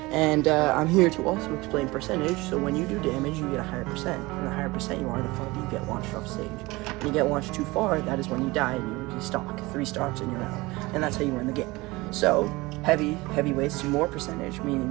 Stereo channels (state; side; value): quieter; left; 22.0 dB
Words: And I'm here to also explain percentage, so when you do damage, you get a higher percent. And the higher percent you are, the farther you get launched off stage. When you get launched too far, that is when you die and you stock. 3 stocks and you're out. And that's how you win the game. So, heavyweights do more percentage, meaning